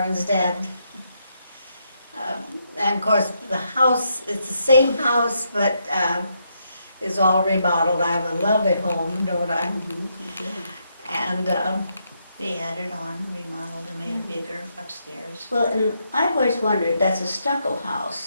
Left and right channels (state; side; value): inverted; both; correlation -0.78